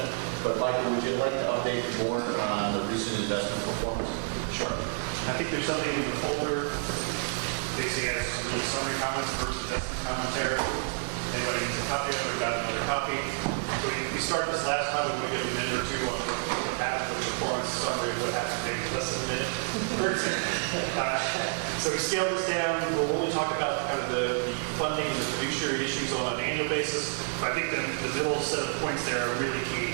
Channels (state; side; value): silent; left; 58 dB below the other